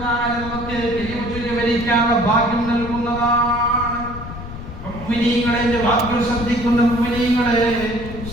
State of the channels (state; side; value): noise; left; rumble, 11 dB below the sound